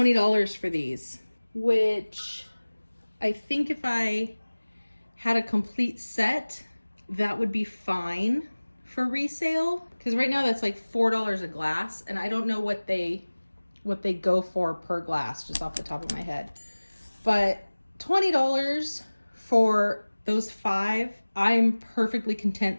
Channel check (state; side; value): inverted; both; correlation -1.00